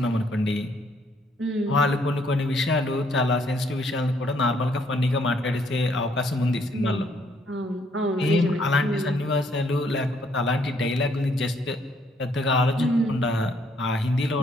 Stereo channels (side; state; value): both; normal; correlation 0.68